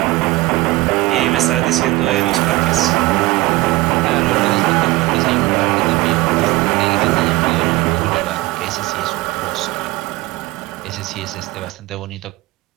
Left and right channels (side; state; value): left; quieter; 19.3 dB